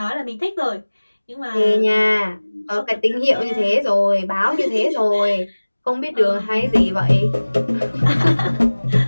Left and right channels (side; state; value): both; inverted; correlation -1.00